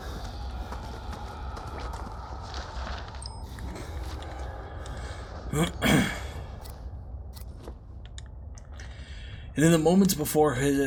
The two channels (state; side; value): identical; both; correlation 1.00